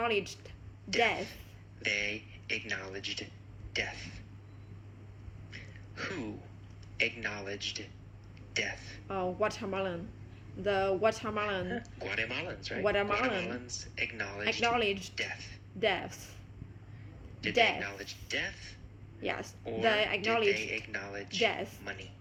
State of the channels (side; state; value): both; identical; correlation 1.00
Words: death. They acknowledged death. Who acknowledged death? Watermelon. The watermelon Guatemalans, right? Guatemalan Guatemalans acknowledged acknowledged death. death. Did death. they acknowledge death? Yes, Or they did acknowledged they acknowledge death. money?